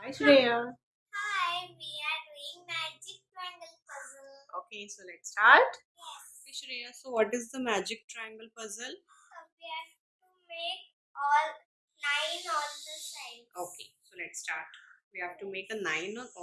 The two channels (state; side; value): identical; both; correlation 1.00